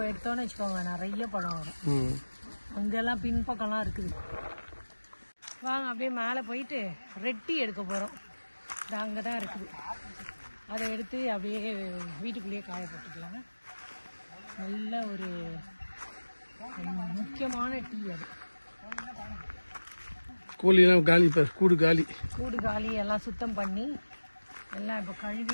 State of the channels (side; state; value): both; inverted; correlation -1.00